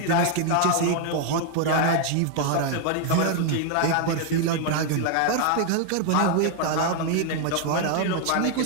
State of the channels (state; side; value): different; both; correlation 0.00